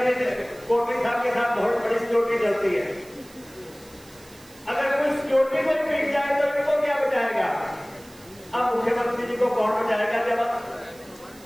कोटली साहब के साथ बहुत बड़ी सिक्योरिटी चलती है। अगर कोई सिक्योरिटी को पीट जाए तो इनको क्या बचाएगा? अब मुख्यमंत्री जी को कौन बचाएगा जब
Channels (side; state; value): right; noise; hiss, 23 dB below the sound